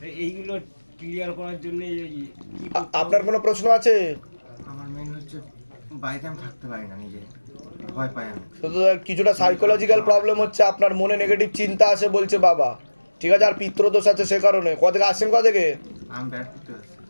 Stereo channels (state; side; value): inverted; both; correlation -1.00